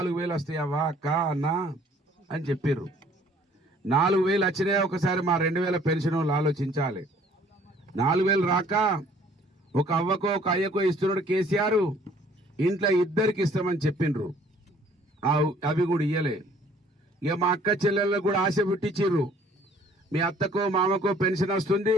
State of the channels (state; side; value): normal; both; correlation 0.57